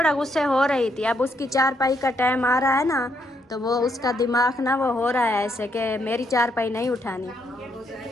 गुस्से हो रही थी, अब उसकी चारपाई का टाइम आ रहा है ना तो वो उसका दिमाग ना वो हो रहा है ऐसे कि मेरी चारपाई नहीं उठानी।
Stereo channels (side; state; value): both; normal; correlation 0.75